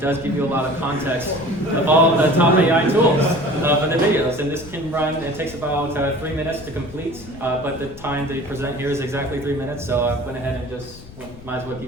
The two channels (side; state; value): left; noise; rumble, 18 dB below the sound